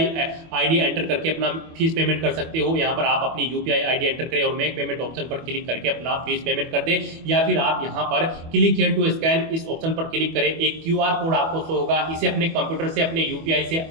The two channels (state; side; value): late; left; 25 ms